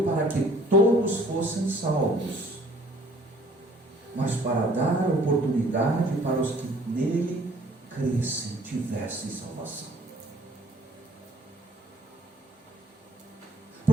para que todos fossem salvos, mas para dar oportunidade para os que nele crescem, tivessem salvação.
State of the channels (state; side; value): normal; both; correlation 0.55